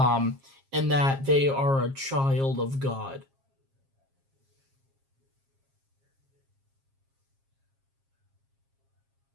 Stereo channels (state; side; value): late; left; 7.4 ms